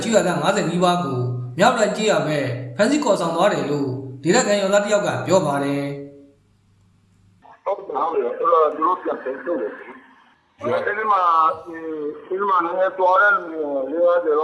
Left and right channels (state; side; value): identical; both; correlation 1.00